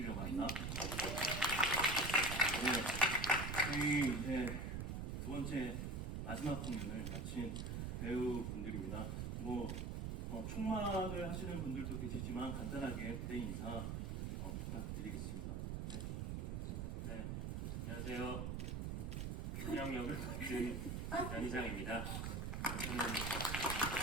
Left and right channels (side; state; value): right; noise; rumble, 2 dB below the sound